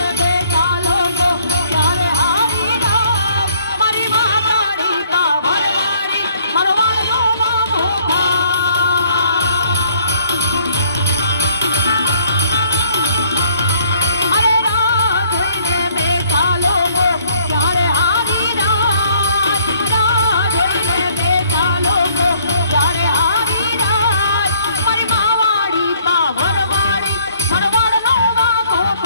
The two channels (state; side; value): inverted; both; correlation -0.63